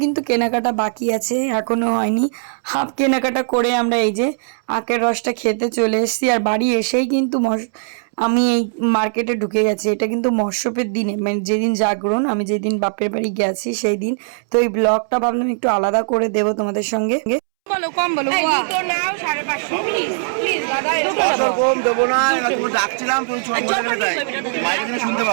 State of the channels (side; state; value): left; silent; 66 dB below the other